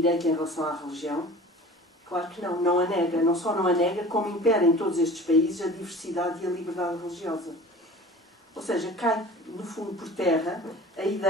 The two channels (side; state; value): both; normal; correlation 0.42